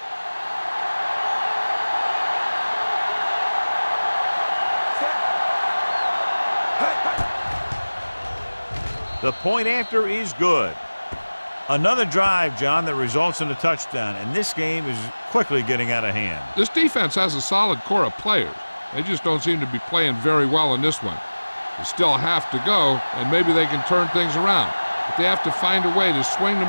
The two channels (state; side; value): inverted; both; correlation -1.00